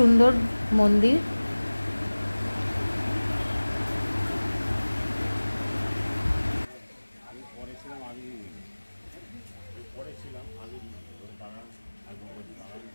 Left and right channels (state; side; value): inverted; both; correlation -1.00